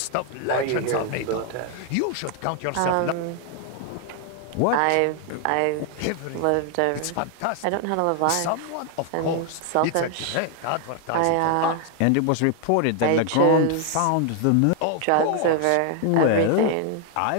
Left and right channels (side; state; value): both; different; correlation 0.00